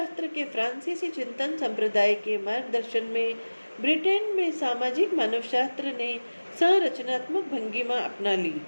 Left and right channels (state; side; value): inverted; both; correlation -1.00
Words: के फ्रांसीसी चिंतन संप्रदाय के मार्गदर्शन में ब्रिटेन में सामाजिक मानवशास्त्र ने संरचनात्मक भंगिमा अपना ली।